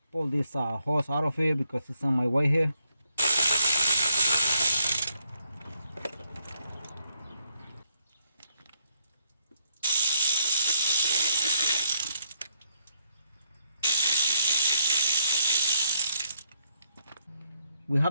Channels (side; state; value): both; inverted; correlation -0.74